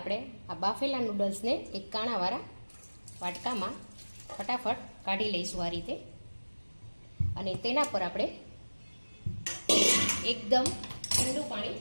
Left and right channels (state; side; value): inverted; both; correlation -1.00